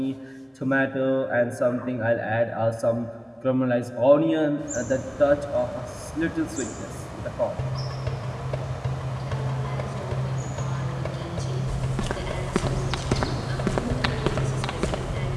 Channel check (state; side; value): identical; both; correlation 1.00